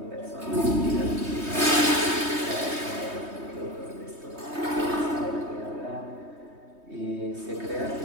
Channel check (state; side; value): late; left; 3.2 ms